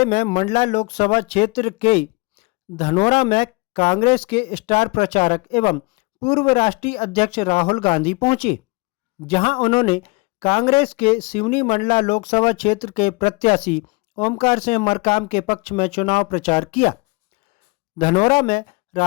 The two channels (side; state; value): right; quieter; 27.3 dB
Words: में मंडला लोकसभा क्षेत्र के धनोरा में कांग्रेस के स्टार प्रचारक एवं पूर्व राष्ट्रीय अध्यक्ष राहुल गांधी पहुंचे, जहां उन्होंने कांग्रेस के सिवनी मंडला लोकसभा क्षेत्र के प्रत्याशी ओमकार सिंह मरकाम के पक्ष में चुनाव प्रचार किया। धनोरा में